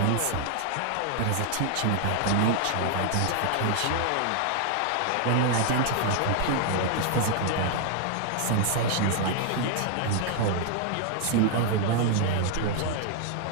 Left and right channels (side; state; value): both; different; correlation 0.00